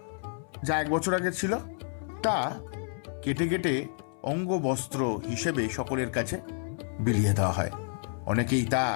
যা 1 বছর আগে ছিল তা কেটে কেটে অঙ্গ বস্ত্র হিসেবে সকলের কাছে বিলিয়ে দেওয়া হয়। অনেকেই তা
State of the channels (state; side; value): silent; right; 58 dB below the other